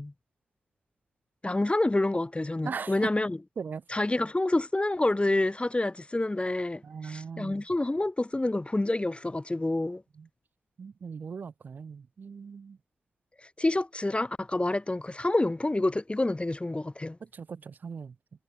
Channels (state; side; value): normal; both; correlation 0.97